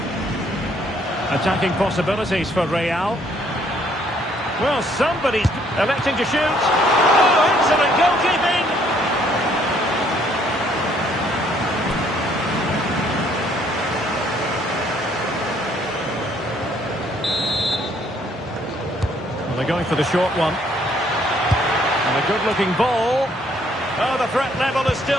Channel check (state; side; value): normal; both; correlation 0.65